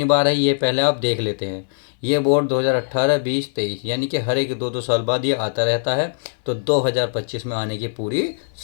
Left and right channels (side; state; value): right; silent; digital silence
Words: बार है, ये पहले आप देख लेते हैं। ये बोर्ड 2018, 20, 23 यानी कि हर एक 2-2 साल बाद ये आता रहता है। तो 2025 में आने की पूरी